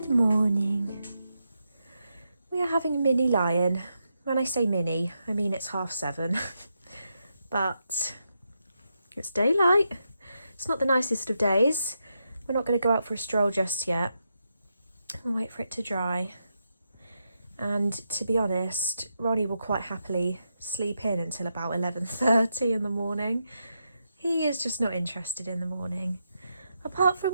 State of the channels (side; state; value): both; inverted; correlation -0.84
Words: Good morning. We are having a mini lie-in. When I say mini, I mean it's 7:30. But it's daylight. It's not the nicest of days. We're not going to go out for a stroll just yet. We'll wait for it to dry. And to be honest, Ronnie will quite happily sleep in until about 11:30 in the morning. He is just not interested in the morning. Apart